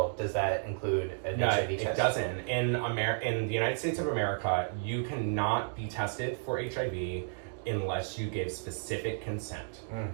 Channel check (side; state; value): left; silent; digital silence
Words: does that include an HIV test? It doesn't. In the United States of America, you cannot be tested for HIV unless you give specific consent.